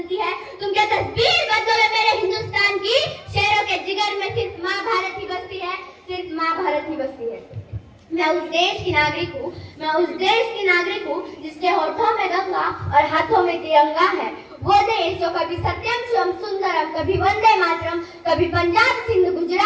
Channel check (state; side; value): identical; both; correlation 1.00